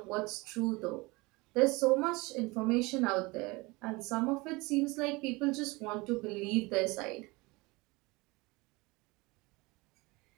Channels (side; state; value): left; quieter; 24.3 dB